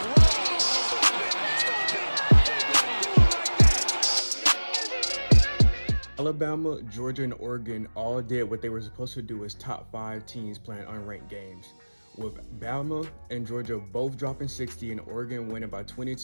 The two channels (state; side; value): inverted; both; correlation -1.00